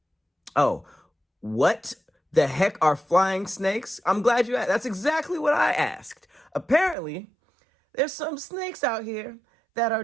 Oh, what the heck are flying snakes? I'm glad you asked. That's exactly what I asked. Apparently, there's some snakes out here that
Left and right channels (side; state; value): left; drops out; at 7.0 s